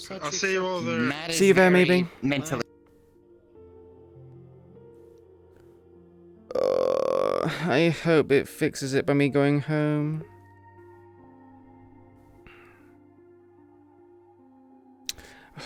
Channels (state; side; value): identical; both; correlation 1.00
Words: I'll Sachi, see you all there. Matt See is you there, very maybe. mentally. I hope it fixes it by me going home.